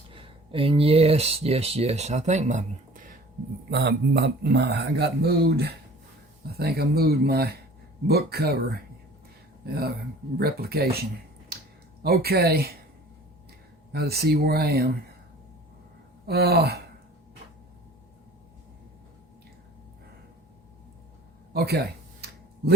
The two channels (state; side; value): normal; both; correlation 0.47